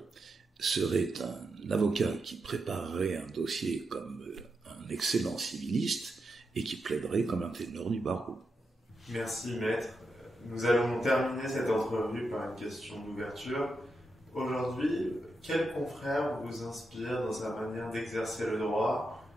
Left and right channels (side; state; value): both; normal; correlation 0.86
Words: serait un avocat qui préparerait un dossier comme un excellent civiliste et qui plaiderait comme un ténor du barreau. Merci maître. Nous allons terminer cette entrevue par une question d'ouverture. Aujourd'hui, quel confrère vous inspire dans sa manière d'exercer le droit,